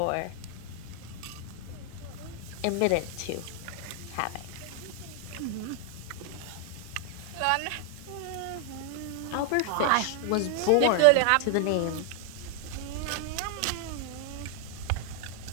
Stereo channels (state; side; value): different; both; correlation 0.00